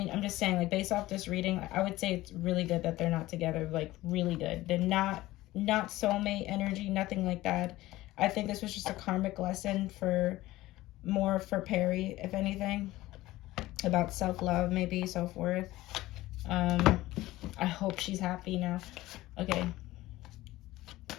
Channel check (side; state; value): right; quieter; 17.3 dB